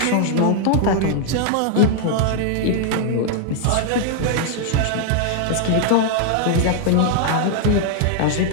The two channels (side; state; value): both; different; correlation 0.00